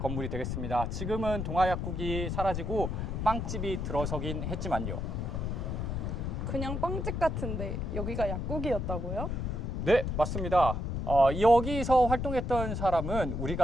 되겠습니다. 지금은 동아약국이 사라지고 빵집이 들어서긴 했지만요. 그냥 빵집 같은데 여기가 약국이었다고요? 네, 맞습니다. 여기서 활동했던 사람은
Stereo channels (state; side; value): noise; left; rumble, 2 dB below the sound